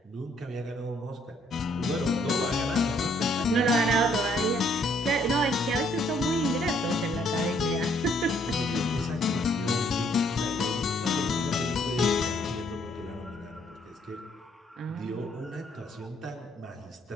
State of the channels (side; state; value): both; normal; correlation 0.67